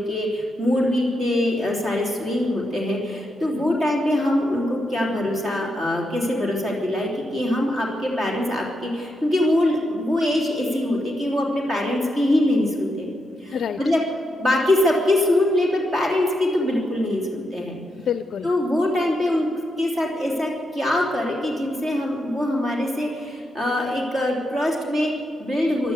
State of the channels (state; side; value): normal; both; correlation 0.83